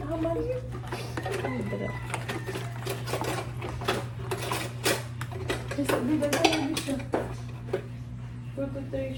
Naman yun. Sabi ba na yun siya? 2 to 3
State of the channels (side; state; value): both; identical; correlation 1.00